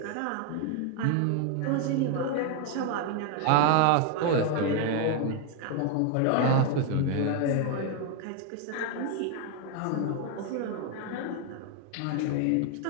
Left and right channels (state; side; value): different; both; correlation 0.01